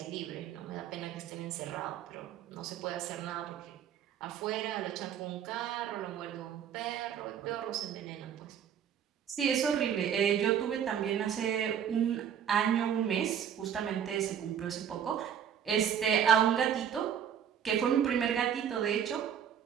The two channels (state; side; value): quieter; left; 8.9 dB